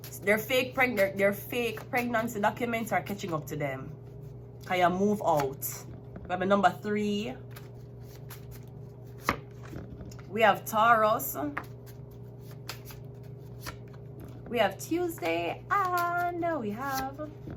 their fake pregnancy documents are catching up to them. Can you move out? We have a number 3. We have Taurus. We have Tuesday, and we have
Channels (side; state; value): both; identical; correlation 1.00